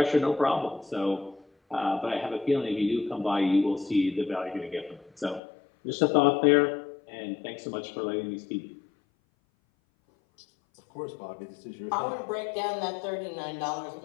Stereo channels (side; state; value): right; drops out; at 5.4 s